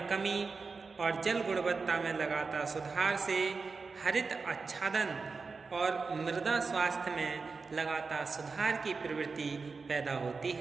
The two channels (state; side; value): quieter; left; 4.5 dB